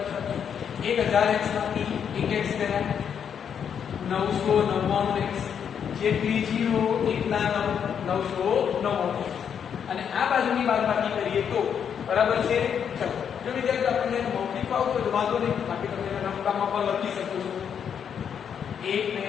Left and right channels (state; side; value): quieter; right; 7.9 dB